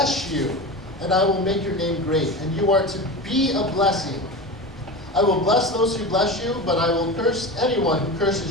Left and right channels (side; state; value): both; normal; correlation 0.27